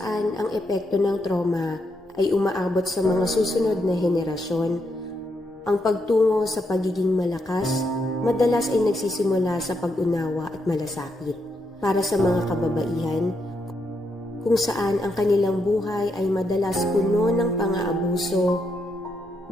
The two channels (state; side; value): normal; both; correlation 0.80